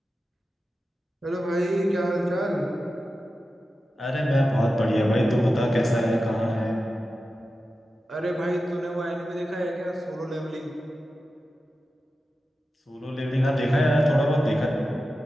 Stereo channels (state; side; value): normal; both; correlation 0.92